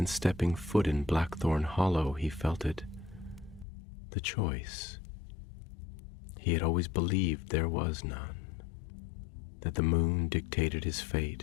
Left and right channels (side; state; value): right; drops out; at 3.7 s